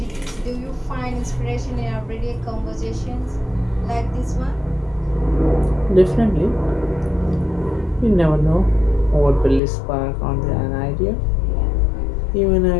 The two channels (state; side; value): drops out; right; at 9.6 s